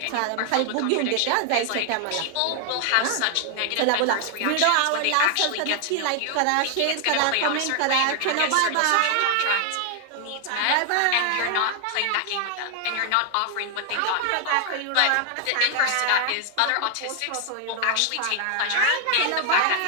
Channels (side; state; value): both; different; correlation 0.00